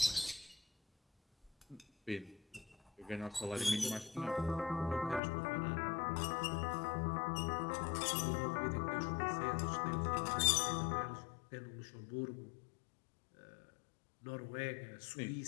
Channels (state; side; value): drops out; right; at 5.2 s